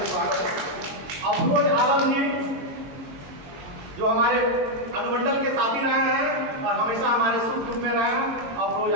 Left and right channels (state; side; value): late; left; 22 ms